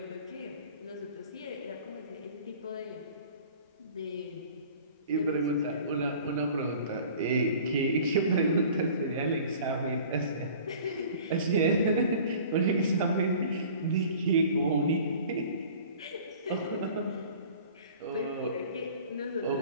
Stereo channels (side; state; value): both; inverted; correlation -0.46